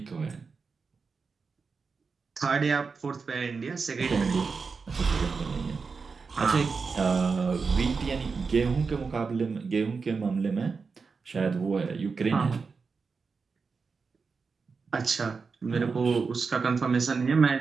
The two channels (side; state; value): left; quieter; 4.9 dB